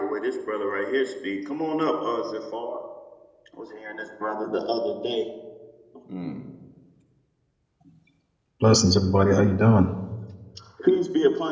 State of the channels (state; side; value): identical; both; correlation 1.00